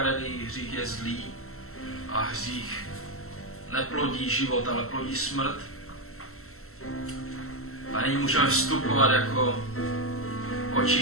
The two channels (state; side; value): late; right; 0.63 ms